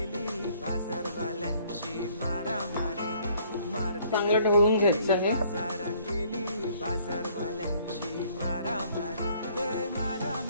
चांगलं ढवळून घ्यायचं आहे.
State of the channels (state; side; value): inverted; both; correlation -0.61